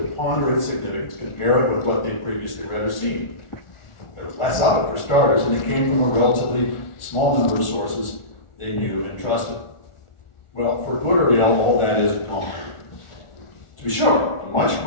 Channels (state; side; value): late; right; 1.4 ms